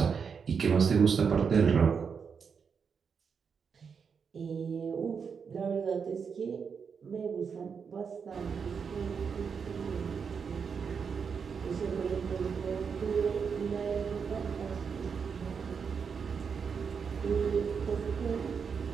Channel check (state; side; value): quieter; left; 6.2 dB